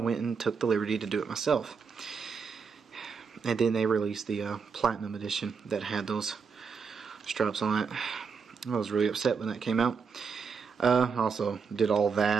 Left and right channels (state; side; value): quieter; left; 5.6 dB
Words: and took the liberty to do it myself. And then they released the Platinum Edition that had those stripes on it. I was really upset when that came out. Also did all